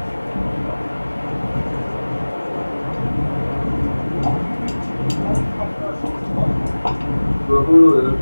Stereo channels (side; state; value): both; inverted; correlation -1.00